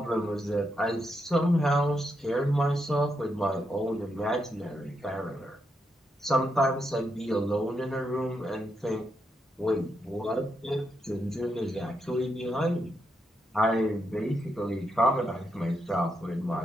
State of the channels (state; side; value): normal; both; correlation 0.82